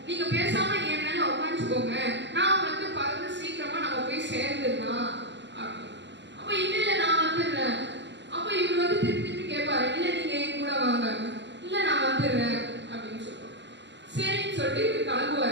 நீங்க பேசாம என் மேல உட்காந்துக்கோங்க, நான் வந்து பறந்து சீக்கிரமா நம்ம போய் சேர்ந்துடலாம் அப்படின்னு. அப்போ இல்ல நான் வந்துடுறேன். அப்போ இவர் வந்து திருப்பி திருப்பி கேட்பாரு, இல்ல நீங்க என் கூட வாங்க, இல்ல நான் வந்துடுறேன் அப்படின்னு சொல்லுவார். சரின்னு சொல்லிட்டு இவர்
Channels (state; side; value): late; left; 0.52 ms